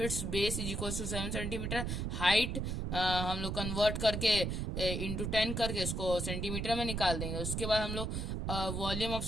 base is equal to 7 centimetre, height हम लोग कन्वर्ट करके इंटू 10 करके इसको सेंटीमीटर में निकाल देंगे। उसके बाद हम लोग वॉल्यूम ऑफ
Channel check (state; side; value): noise; right; rumble, 2 dB below the sound